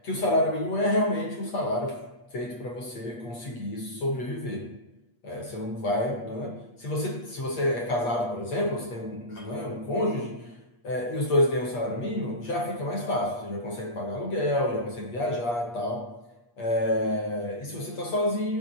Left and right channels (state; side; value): late; right; 8.4 ms